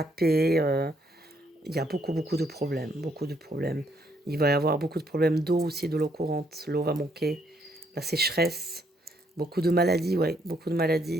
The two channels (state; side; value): normal; both; correlation 0.71